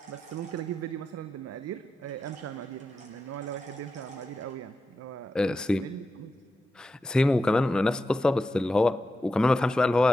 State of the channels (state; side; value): normal; both; correlation 0.90